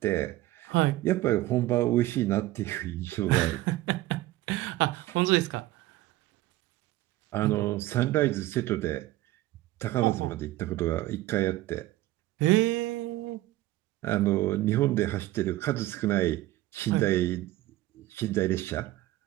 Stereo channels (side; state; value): left; quieter; 16.6 dB